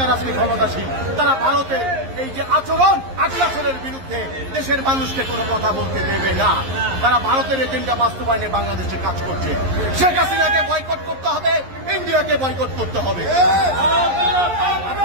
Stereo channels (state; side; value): late; left; 11 ms